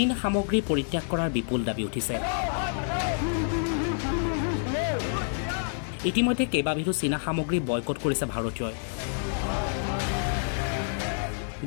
সামগ্ৰী পৰিত্যাগ কৰাৰ বিপুল দাবী উঠিছে। ইতিমধ্যে কেইবাবিধো চীনা সামগ্ৰী বয়কট কৰিছে ভাৰতীয়ই।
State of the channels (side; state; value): right; silent; 59 dB below the other